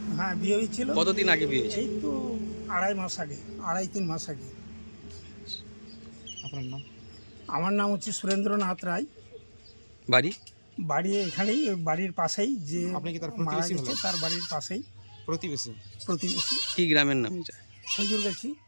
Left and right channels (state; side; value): inverted; both; correlation -1.00